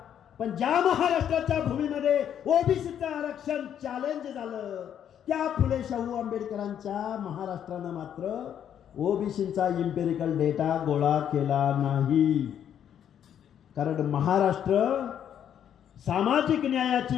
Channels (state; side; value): quieter; right; 9.4 dB